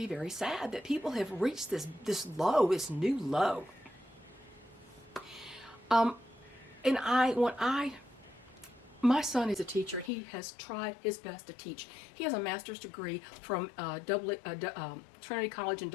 very sad that people have reached this new low. My son is a teacher. He has tried his best to teach. He has a master's degree from Trinity College in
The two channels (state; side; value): drops out; right; at 10.1 s